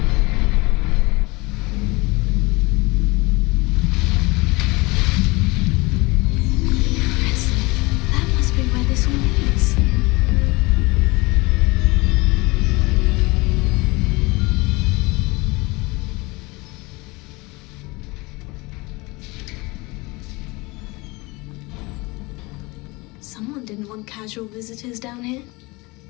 That must be where this all leads. Someone didn't want casual visitors down here.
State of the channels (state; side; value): quieter; right; 24.2 dB